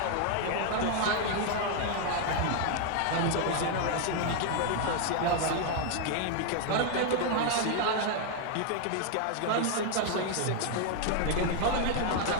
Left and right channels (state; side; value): different; both; correlation 0.00